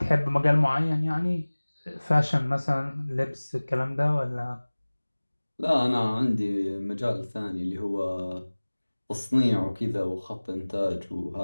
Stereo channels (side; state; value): both; inverted; correlation -1.00